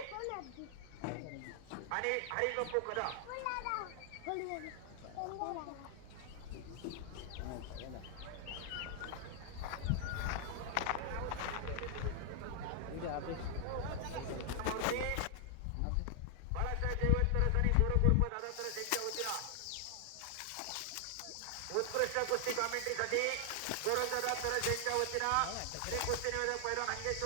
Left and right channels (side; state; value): both; different; correlation 0.00